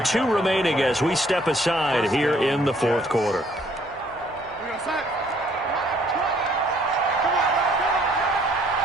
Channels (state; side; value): noise; right; hum, 25 dB below the sound